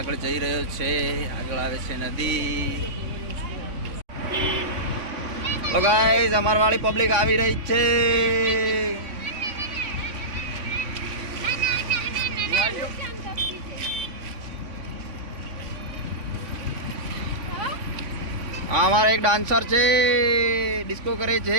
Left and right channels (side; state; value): left; late; 3.5 ms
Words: જઈ રહ્યો છે. આગળ આવે છે નદી. તો ગાઈઝ, અમાર વાળી પબ્લિક આવી રહી છે. આ અમારા એક ડાન્સર છે, ડિસ્કો કરે